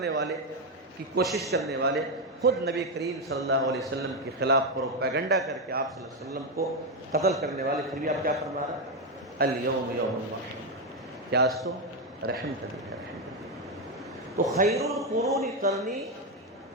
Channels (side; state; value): both; normal; correlation 0.07